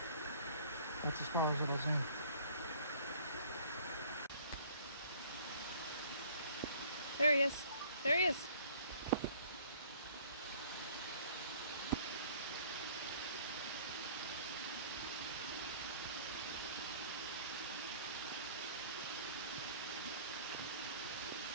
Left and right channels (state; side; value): inverted; both; correlation -0.53